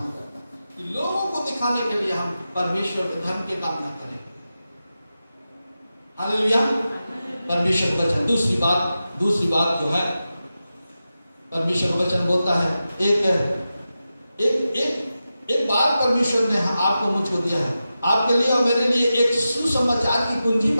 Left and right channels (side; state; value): both; inverted; correlation -0.92